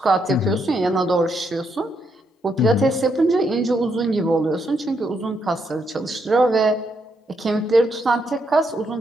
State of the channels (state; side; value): normal; both; correlation 0.77